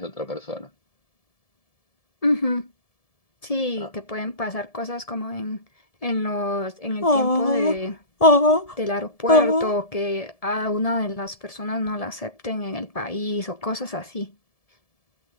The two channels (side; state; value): right; late; 1.7 ms